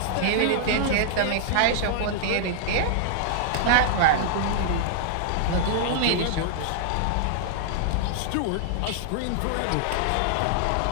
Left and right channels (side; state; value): both; different; correlation -0.01